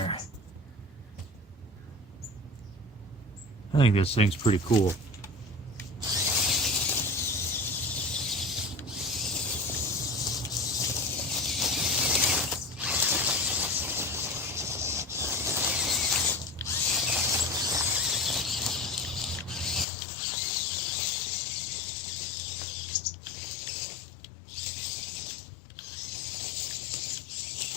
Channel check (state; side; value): drops out; right; at 19.9 s